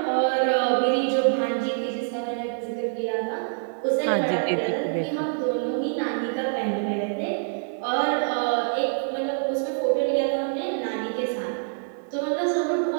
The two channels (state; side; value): silent; left; digital silence